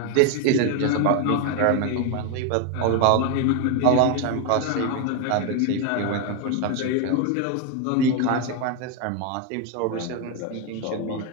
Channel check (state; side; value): different; both; correlation 0.01